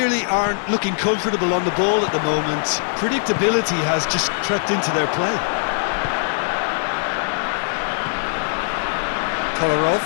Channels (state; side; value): silent; right; digital silence